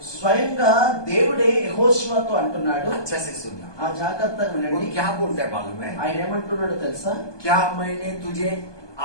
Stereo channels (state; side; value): late; right; 1.2 ms